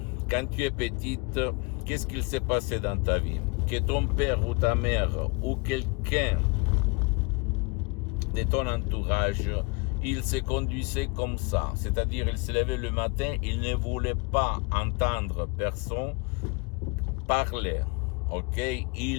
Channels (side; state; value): right; quieter; 29.2 dB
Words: quand tu es petite, qu'est-ce qu'il s'est passé dans ta vie? Que ton père ou ta mère ou quelqu'un de ton entourage, il se conduisait comme ça. C'est-à-dire, il se levait le matin, il ne voulait pas entendre personne parler. Ok?